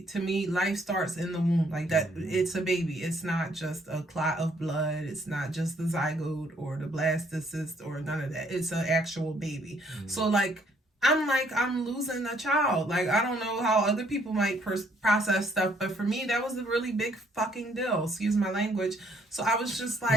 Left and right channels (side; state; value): both; normal; correlation 0.66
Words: To me, life starts in the womb. Like, that, it's a baby. It's not just a clot of blood. It's not just the zygote or the blastocyst or none of that. It's an actual baby. So, like, I'm losing a child. Like, I don't know how other people might process stuff, but for me, that was a really big fucking deal. Excuse my language. So I was just